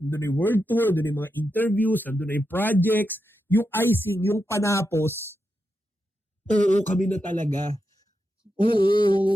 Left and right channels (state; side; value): normal; both; correlation 0.87